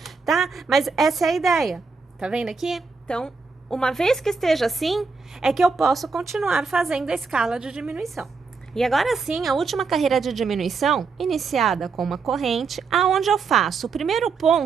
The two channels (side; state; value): left; quieter; 4.8 dB